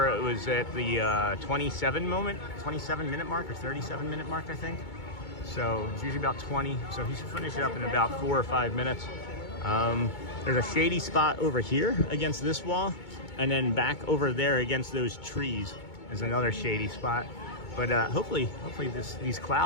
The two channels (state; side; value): late; right; 2.2 ms